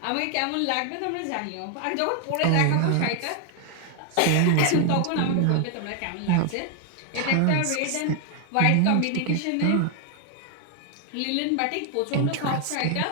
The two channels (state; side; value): different; both; correlation 0.00